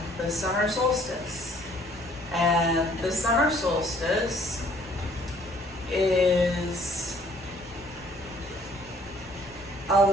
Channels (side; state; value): both; normal; correlation 0.59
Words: the summer solstice. And the summer solstice is a